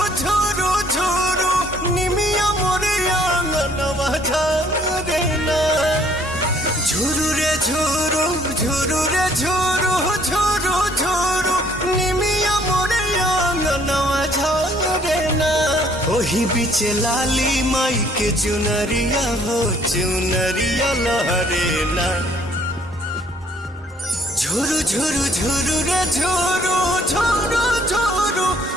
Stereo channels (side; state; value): both; normal; correlation 0.62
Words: ঝুরু ঝুরু নিমিয়া মোরে আঙ্গনवा ঝরে না। ঝুরু রে ঝুরু ঝুরু রে ঝুরু ঝুরু ঝুরু নিমিয়া মোরে আঙ্গনवा ঝরে না। ओही बीचे लाली माई के चुनरिया हो चुनरिया लहरे ना। झुरु झुरु झुरु रे झुरु झुरु झुरु